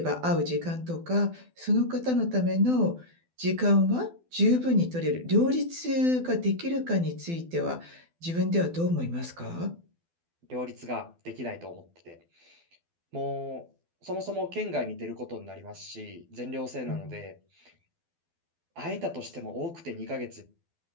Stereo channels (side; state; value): left; late; 12 ms